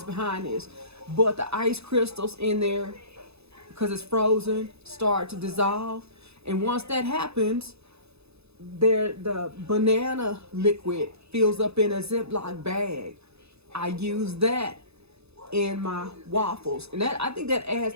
behind this, but the ice crystals in there, because it's frozen, start to dissolve. And once that happens, the banana liquid fills up in a Ziploc bag. I use that in my waffles, and I think that adds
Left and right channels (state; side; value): late; left; 0.79 ms